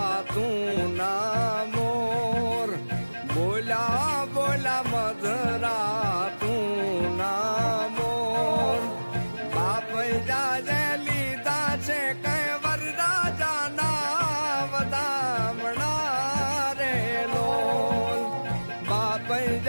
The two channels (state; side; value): inverted; both; correlation -1.00